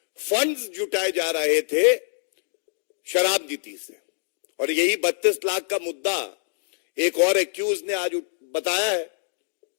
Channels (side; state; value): right; silent; digital silence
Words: फंड्स जुटाए जा रहे थे शराब नीति से, और यही 32 लाख का मुद्दा एक और एक्यूज ने आज बताया है।